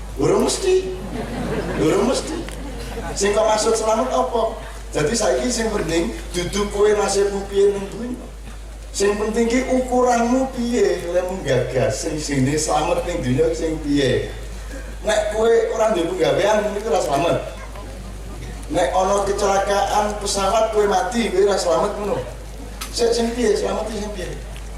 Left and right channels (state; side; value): identical; both; correlation 1.00